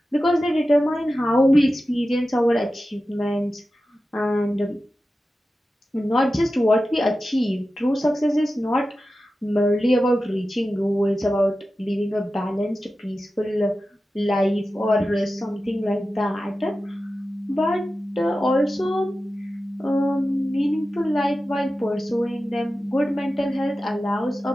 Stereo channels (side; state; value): both; normal; correlation 0.93